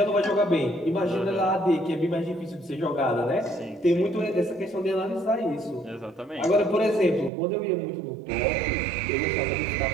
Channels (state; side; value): drops out; left; at 7.3 s